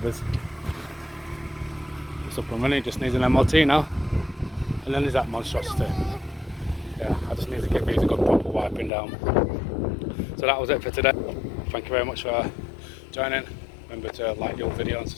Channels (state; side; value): drops out; right; at 8.9 s